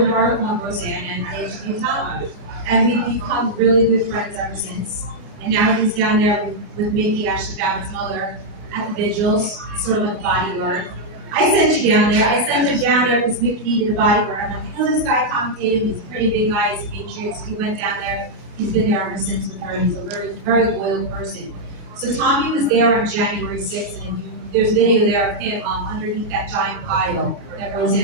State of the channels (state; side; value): late; left; 29 ms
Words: article on Roseanne and I interviewed Tommy. And we've become really good friends ever since. And now he's down there with Mickey, Ashley Babbitt's mother, at the vigils, sort of like a bodyguard. I sent you down there. I sent him down there because Mickey needed a bodyguard. I'm like, I know this guy, Tommy Tatum. He's a pretty big guy. He's a Patriot. So he went down there. He's been there ever since with her. He's a very, very loyal person. So Tommy was there on January 6th, and there's video there of him underneath that giant pile that